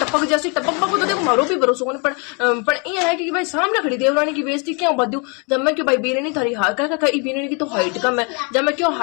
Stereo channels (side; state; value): right; quieter; 34.4 dB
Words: जैसी टपक तो देखो मारो भी भरोसा होने पर ये है कि भाई सामने खड़ी देवरानी की बेइज्जती क्यों बदू जब मैं क्यों भाई बीरनी थारी बीरनी की तो हाइट कम है जब मैं क्यों